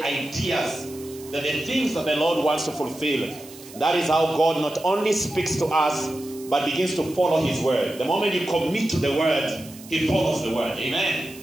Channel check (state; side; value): noise; right; hiss, 19 dB below the sound